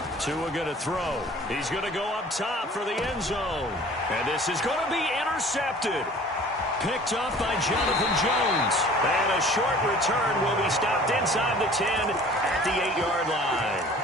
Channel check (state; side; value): normal; both; correlation 0.48